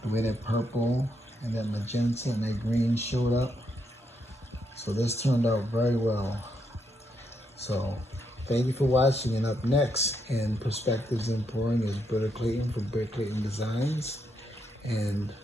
The way that purple and that magenta and that green showed up. So this turned out very well. So thank you for watching, and up next in Perspectives in Pouring is Britta Clayton from Britta Clayton Designs. And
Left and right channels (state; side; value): normal; both; correlation 0.78